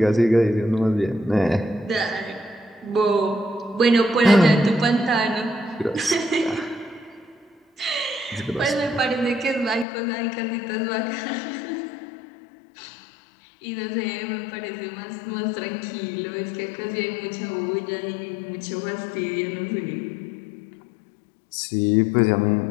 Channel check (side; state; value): right; drops out; at 9.9 s